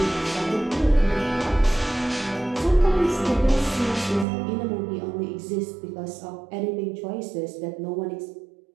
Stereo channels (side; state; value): left; drops out; at 4.2 s